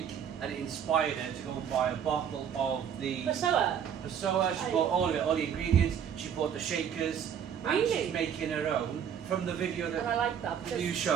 and it inspired her to go and buy a bottle of the Passoa. Passoa. She bought all of it, all the ingredients. She bought the shakers, and Really? she's making her own from the video And I that like that because you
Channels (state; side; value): quieter; left; 8.3 dB